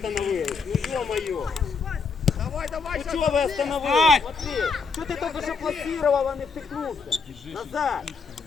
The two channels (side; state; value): right; quieter; 4.9 dB